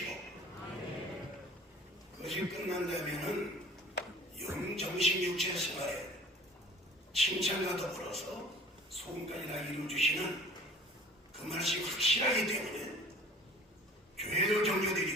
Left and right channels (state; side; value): normal; both; correlation 0.47